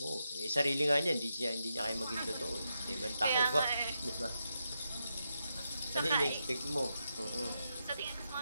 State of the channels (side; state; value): both; inverted; correlation -0.85